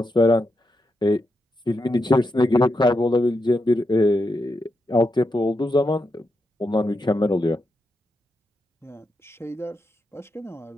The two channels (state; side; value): normal; both; correlation 0.85